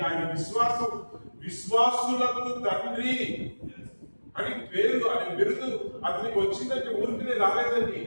ఆయన విశ్వాసులకు తండ్రి అని పేరు, ఆయన బిరుదు అతనికి వచ్చిందంటే ఊరికినే రాలేదండి.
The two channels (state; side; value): inverted; both; correlation -1.00